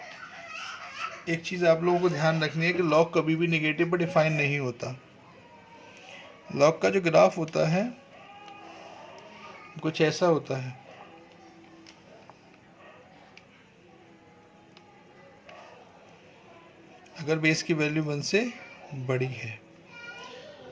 एक चीज़ आप लोगों को ध्यान रखनी है कि लॉग कभी भी नेगेटिव पर डिफाइन नहीं होता। लॉग का जो ग्राफ होता है कुछ ऐसा होता है। अगर बेस की वैल्यू 1 से बड़ी है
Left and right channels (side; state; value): both; identical; correlation 1.00